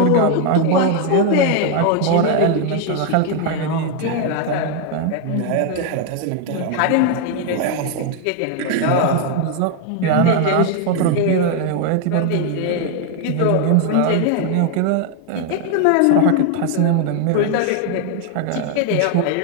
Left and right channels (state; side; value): different; both; correlation 0.01